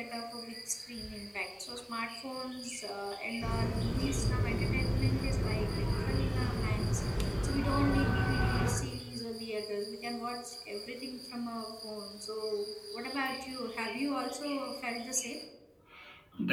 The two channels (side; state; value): both; identical; correlation 1.00